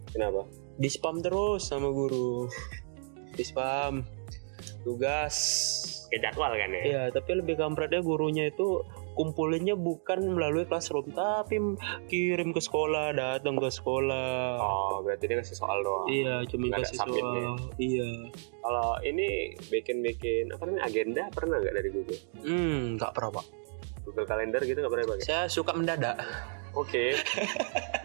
Kenapa? Di spam terus sama guru. Di spam tugas. Kayak jadwal kan ya? Iya, tapi lebih kampretnya gurunya itu kumpulinnya bukan melalui classroom, tapi kirim ke sekolah, datang ke sekolah. Oh, berarti dia ngasih soal doang. Iya, cuma Nggak ada kasih submitnya. soal. Iya. Kalau ini bikin agenda pernah nggak dari Google? Nggak pernah Pak. Google Calendar gitu nggak pernah pakai? Saya suka mendadak. Oke.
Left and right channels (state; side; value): silent; left; digital silence